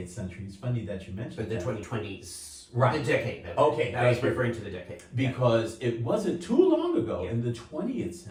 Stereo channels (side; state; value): both; identical; correlation 1.00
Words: century, it's funny that you mentioned But the that. 2020s. Right. The decade. Okay. I was referring to the decade. Because it wasn't too long ago in the 20th